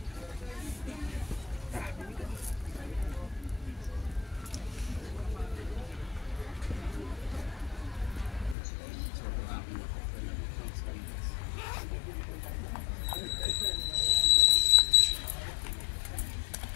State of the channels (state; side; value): drops out; right; at 8.6 s